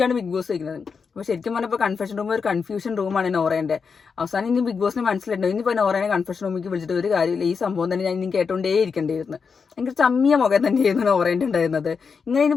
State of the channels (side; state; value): right; quieter; 5.6 dB